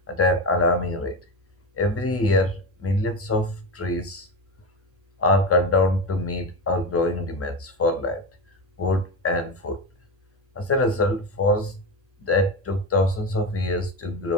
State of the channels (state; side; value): normal; both; correlation 0.20